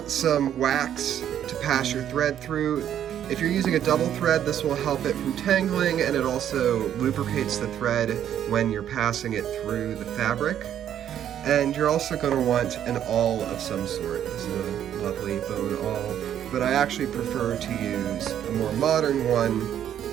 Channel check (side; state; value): left; quieter; 10.2 dB